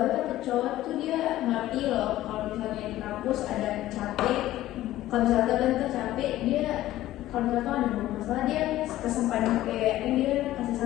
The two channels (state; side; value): quieter; right; 14.8 dB